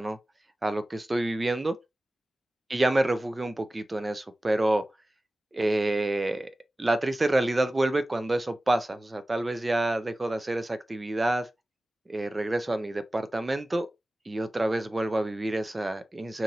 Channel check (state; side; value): normal; both; correlation 0.97